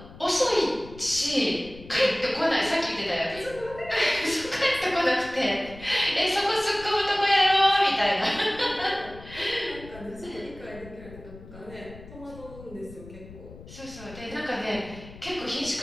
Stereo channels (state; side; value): noise; left; rumble, 17 dB below the sound